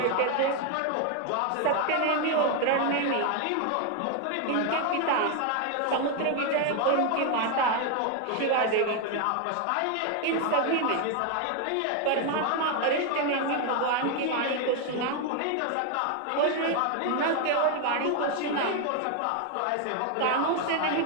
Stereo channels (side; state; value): both; different; correlation 0.01